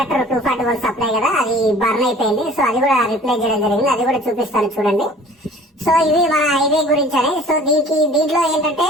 240 వోల్ట్ సప్లై కదా, అది బర్న్ అయిపోయింది. సో అది కూడా రిప్లేస్ చేయడం జరిగింది. అది కూడా చూపిస్తాను చూడండి. సో ఇవి మన హైవే గురించి అని. సో దీంట్లో ఏంటంటే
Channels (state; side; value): normal; both; correlation 0.49